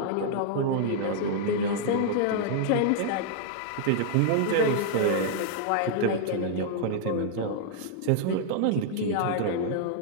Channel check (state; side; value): different; both; correlation -0.01